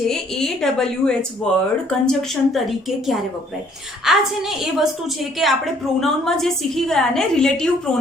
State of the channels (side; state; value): both; normal; correlation 0.62